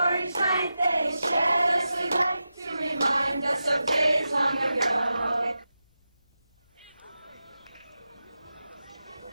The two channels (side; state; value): both; inverted; correlation -0.91